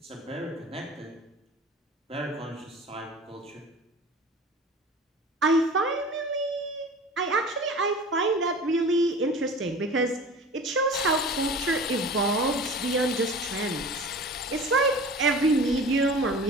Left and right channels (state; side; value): normal; both; correlation 0.39